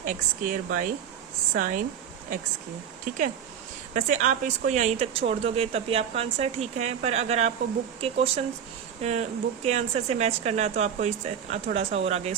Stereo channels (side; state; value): left; quieter; 8.4 dB